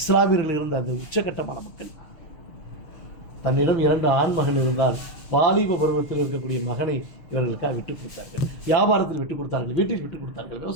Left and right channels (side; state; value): right; late; 6.4 ms